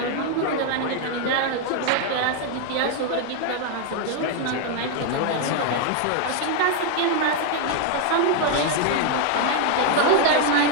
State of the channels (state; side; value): different; both; correlation 0.00